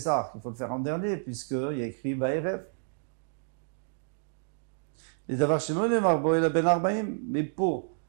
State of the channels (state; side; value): silent; left; digital silence